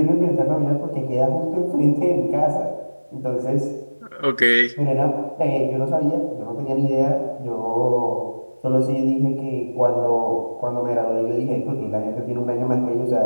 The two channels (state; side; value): inverted; both; correlation -1.00